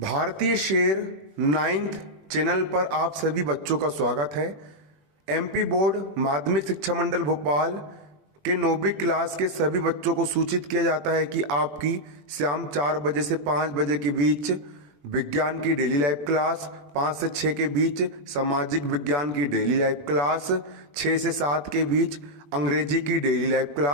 शेर 9th channel पर आप सभी बच्चों का स्वागत है। एमपी बोर्ड माध्यमिक शिक्षा मंडल भोपाल के 9वीं क्लास के सभी बच्चों को सूचित किया जाता है कि आपकी शाम 4 बजे से 5 बजे के बीच विज्ञान की डेली लाइव क्लास, 5 से 6 के बीच सामाजिक विज्ञान की डेली लाइव क्लास, 6 से 7 के बीच अंग्रेजी की डेली लाइव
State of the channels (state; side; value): late; left; 21 ms